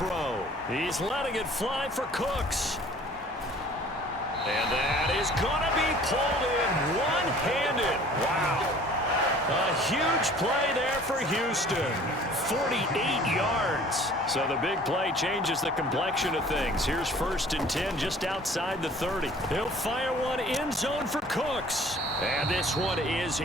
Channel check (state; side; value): normal; both; correlation 0.50